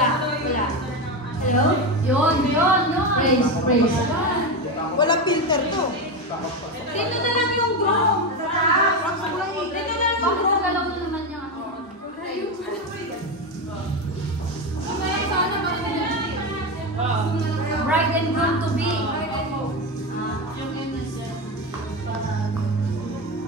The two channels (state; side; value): normal; both; correlation 0.15